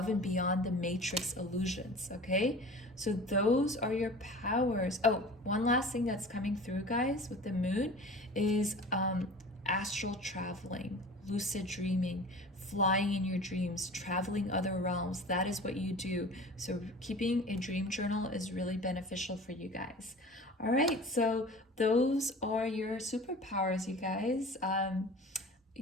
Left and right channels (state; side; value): normal; both; correlation 0.40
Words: and beyond the matrix illusions, okay? So those are your powers. Oh, one last thing that's coming through, guys, with the moon is astral traveling, lucid dreaming, flying in your dreams, traveling other realms. That is what you do. So keeping a dream journal is really beneficial for you guys. All right, so those are your superpowers, you guys.